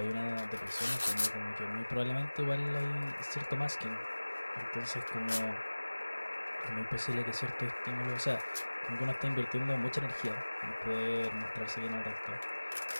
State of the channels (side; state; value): both; inverted; correlation -1.00